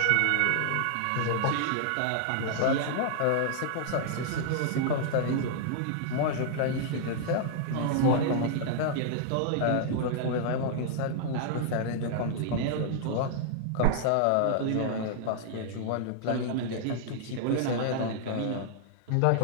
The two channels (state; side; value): different; both; correlation -0.01